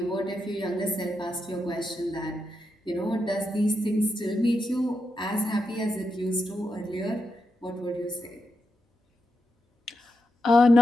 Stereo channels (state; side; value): normal; both; correlation 0.84